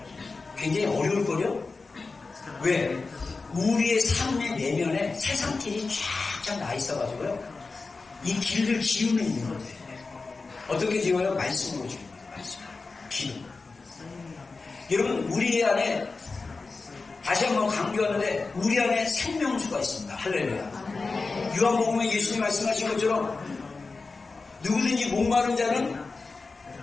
굉장히 어려울 거예요? 왜? 우리의 삶의 내면에 세상길이 쫙쫙 나 있어가지고요. 이 길을 지우면 있는 거예요. 어떻게 지워요? 말씀으로 지웁니다. 말씀. 기도. 여러분, 우리 안에, 다시 한번 강조하는데, 우리 안에 생명수가 있습니다. 할렐루야. 요한복음에 예수님 말씀하신 것처럼, 누구든지 목마른 자는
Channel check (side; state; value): right; quieter; 4.0 dB